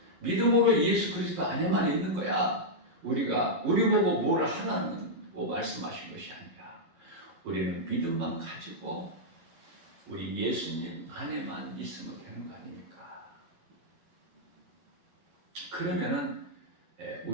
믿음으로 예수 그리스도 안에만 있는 거야. 우리 보고 뭘 하라고 말씀하신 것이 아니라 우리는 믿음만 가지고 우리 예수님 안에만 있으면 되는 거 아닙니까? 그러면은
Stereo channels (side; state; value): left; late; 11 ms